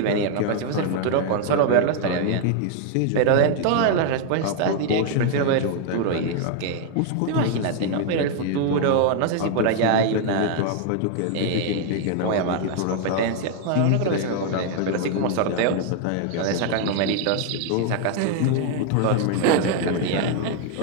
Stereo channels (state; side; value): different; both; correlation 0.00